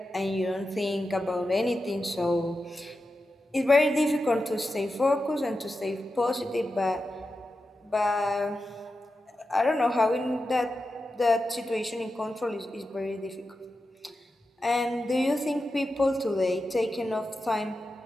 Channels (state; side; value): normal; both; correlation 0.91